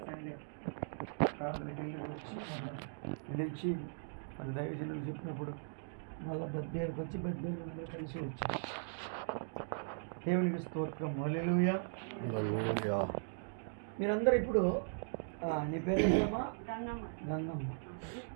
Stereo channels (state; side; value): silent; left; digital silence